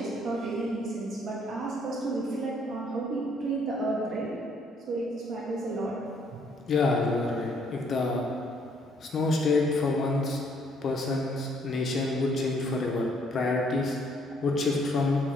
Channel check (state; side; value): normal; both; correlation 0.66